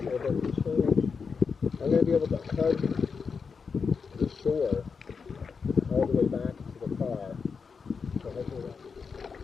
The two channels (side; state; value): right; quieter; 5.5 dB